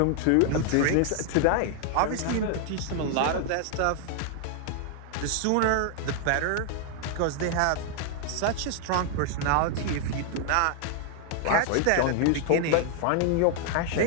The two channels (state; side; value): different; both; correlation 0.00